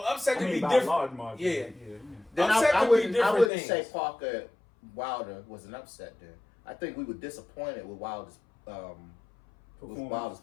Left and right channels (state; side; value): drops out; right; at 3.5 s